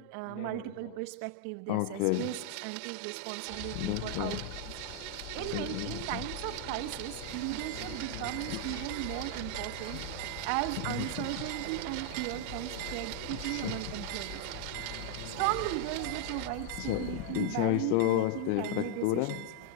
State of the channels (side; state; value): both; different; correlation -0.01